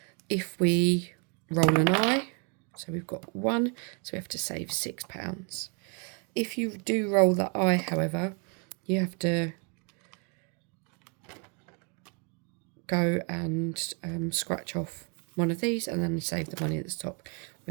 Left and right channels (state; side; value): quieter; left; 35.9 dB